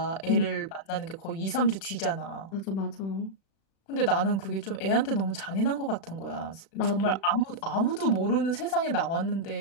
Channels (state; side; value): late; right; 36 ms